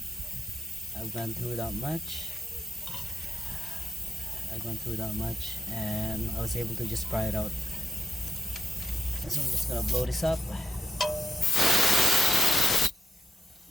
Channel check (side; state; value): both; normal; correlation 0.86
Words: gone through that much. And I was able to just pry it out. So I'm just gonna blow this up.